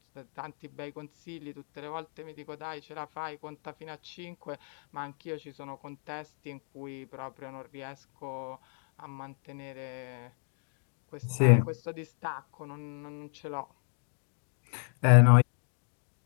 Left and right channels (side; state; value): right; silent; 55 dB below the other